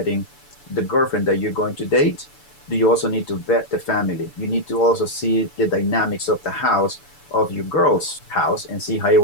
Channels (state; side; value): late; right; 6.9 ms